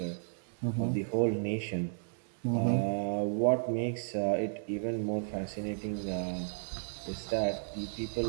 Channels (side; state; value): left; silent; digital silence